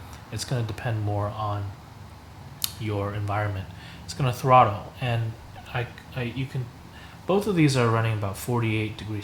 It's going to depend more on your environment. It's going to throttle, and you can, both of these are running about 48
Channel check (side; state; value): both; identical; correlation 1.00